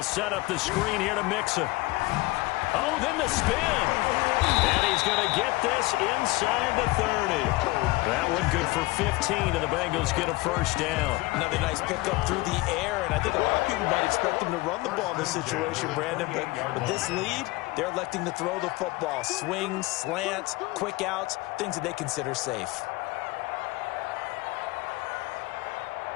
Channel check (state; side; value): quieter; right; 21.4 dB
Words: set up the screen here to Mixon. Oh, then the spin. And he's going to get this inside the 30. That one good for 15, and the Bengals get a first down. Another nice pickup through the air, and I think a lot of people might expect them to run the ball in this situation, Brandon. But with this lead, they're electing to throw the football. Swings, slants, quick outs, things that they consider safe.